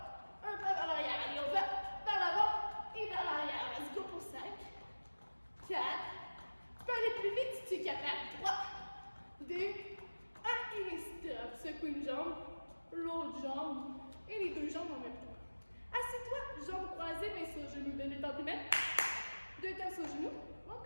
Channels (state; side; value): inverted; both; correlation -1.00